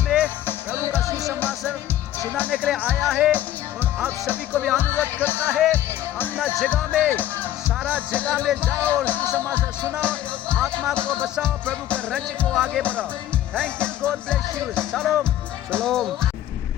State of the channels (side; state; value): right; quieter; 12.6 dB